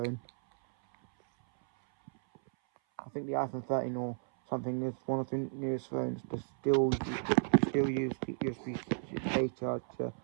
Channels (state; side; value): silent; left; 55 dB below the other